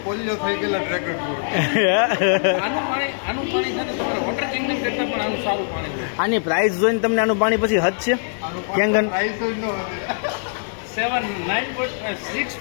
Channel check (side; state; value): right; silent; digital silence